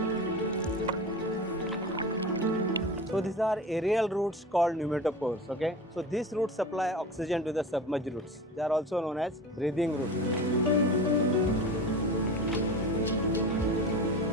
So these are aerial roots called pneumatophores, okay? So these roots supply oxygen to the submerged roots. They are also known as breathing roots.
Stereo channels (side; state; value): both; normal; correlation 0.32